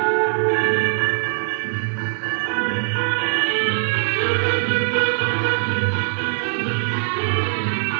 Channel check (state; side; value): silent; left; digital silence